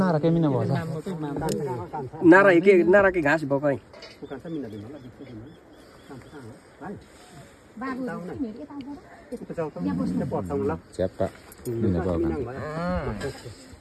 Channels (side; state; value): both; identical; correlation 1.00